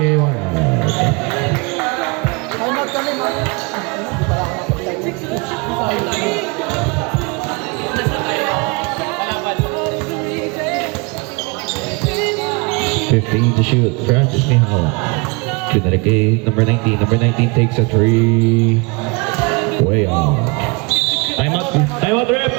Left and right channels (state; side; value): quieter; left; 29.2 dB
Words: $15 to shoot. Francis may hawak. Pinalik kay number 19. Number 19 takes a 3. Way off. Timeout, rep!